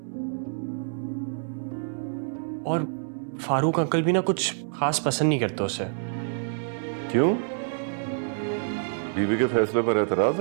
और फारूक अंकल भी ना कुछ खास पसंद नहीं करते उसे। क्यों? बीवी के फैसले पर एतराज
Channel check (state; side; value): silent; left; 60 dB below the other